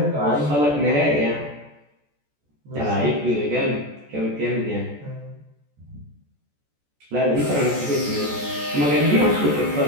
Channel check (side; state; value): left; late; 14 ms